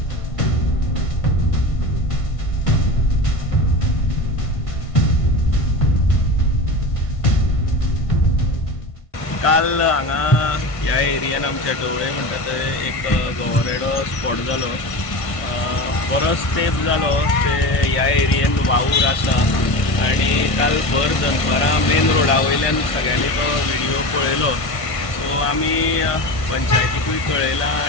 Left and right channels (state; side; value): late; right; 1.5 ms